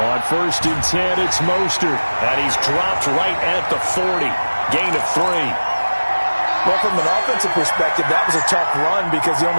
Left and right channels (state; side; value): inverted; both; correlation -1.00